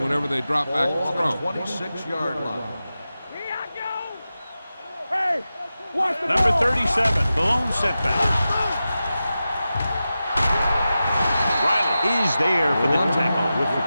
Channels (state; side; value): inverted; both; correlation -0.93